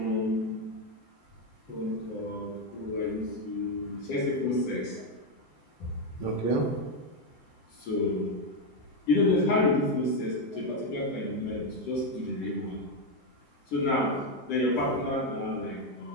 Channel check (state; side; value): late; right; 7.8 ms